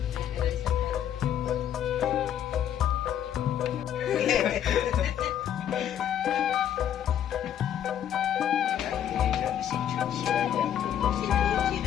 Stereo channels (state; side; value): quieter; right; 10.1 dB